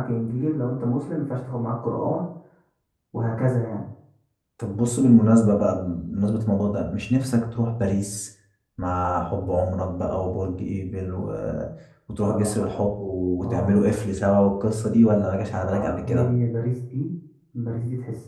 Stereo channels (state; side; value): identical; both; correlation 1.00